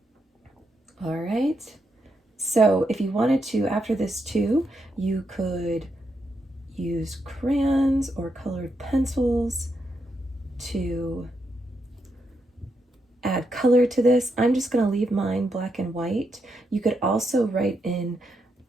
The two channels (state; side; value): normal; both; correlation 0.82